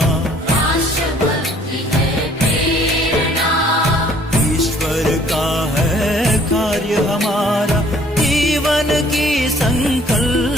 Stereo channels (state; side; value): normal; both; correlation 0.58